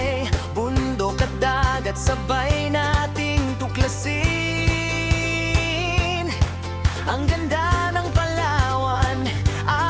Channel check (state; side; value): identical; both; correlation 1.00